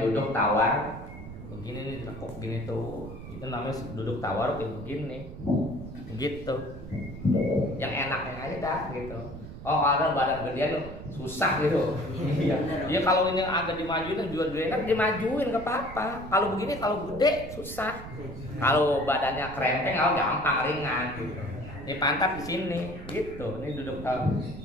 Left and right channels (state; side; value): noise; right; rumble, 12 dB below the sound